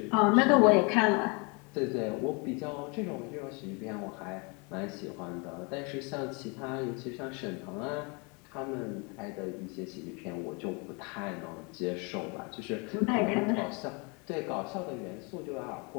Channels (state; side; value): quieter; right; 31.6 dB